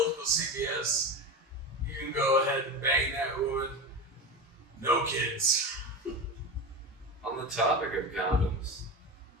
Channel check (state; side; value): normal; both; correlation 0.23